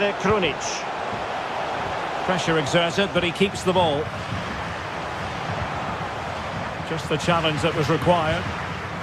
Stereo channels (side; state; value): both; identical; correlation 1.00